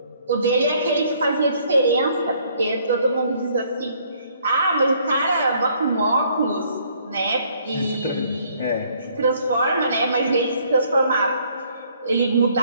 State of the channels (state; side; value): inverted; both; correlation -0.64